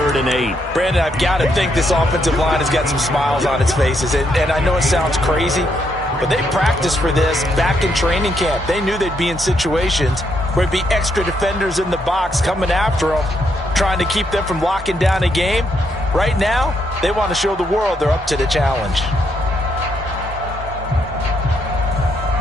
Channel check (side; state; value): both; normal; correlation 0.76